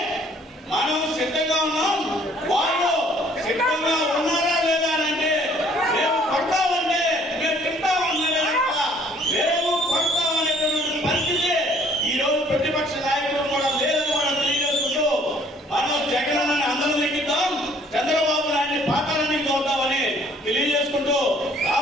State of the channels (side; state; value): both; normal; correlation 0.59